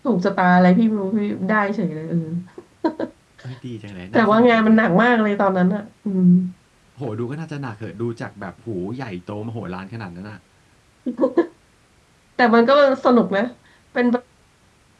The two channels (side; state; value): both; identical; correlation 1.00